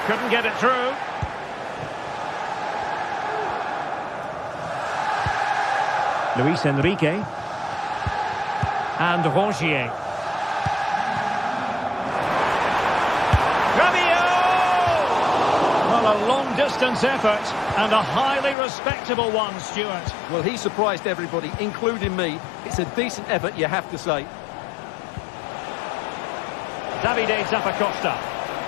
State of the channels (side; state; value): right; drops out; at 18.6 s